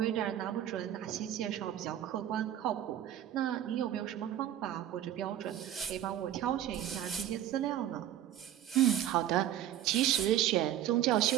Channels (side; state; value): left; quieter; 11.6 dB